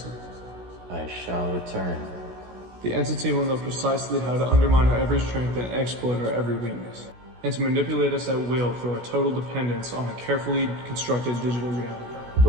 I shall return. The entity will know precisely how to undermine our every strength and exploit our every weakness, and to manipulate us at will through our total dependence on a carefully constructed digital reality. The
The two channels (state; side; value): late; left; 16 ms